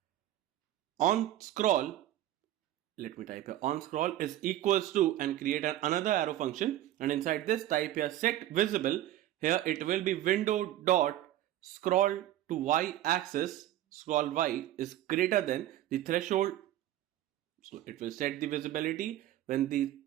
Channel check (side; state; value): left; quieter; 13.4 dB